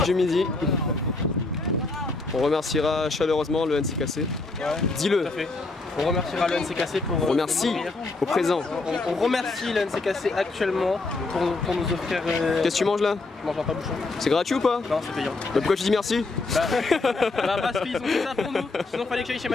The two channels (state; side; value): quieter; right; 3.5 dB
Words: Du midi. On remerciera chaleureusement le NCKC. Ouais, dis-le. Tout à fait. On remerciera le NCKC pour... On remercie au présent. On remercie le NCKC actuellement pour nous offrir... Qu'est-ce que tu manges là? Je mange un pain-bouchon. C'est gratuit ou pas? Non, c'est payant. Bah pourquoi tu dis merci? Parce qu'ils ont fait ça pour nous. Sinon fallait que j'aille chez